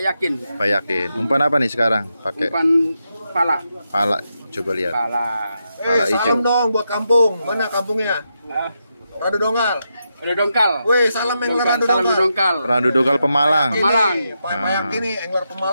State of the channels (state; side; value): inverted; both; correlation -0.85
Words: Yakin. Pak Yakin. Umpan apa nih sekarang? Pakai Umpan pala. pala. Coba lihat. Pala. Pala hijau. Salam dong buat kampung. Mana kampungnya? Ah, Radu Dongal. ada dongkal. Wih, salam angler Radu Salam Dongal. dongkal. Randu Dogal Pemalang. Pemalang. Pak Yakin nih, angler